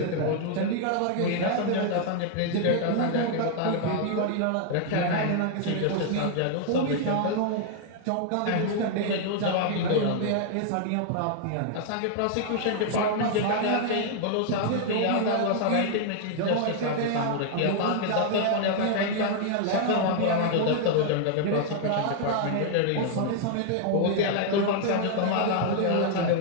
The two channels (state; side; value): different; both; correlation 0.00